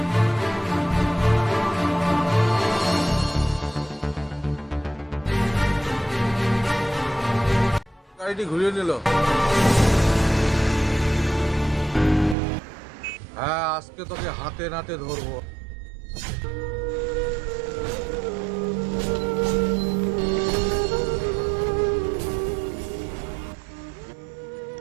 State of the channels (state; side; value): drops out; left; at 12.4 s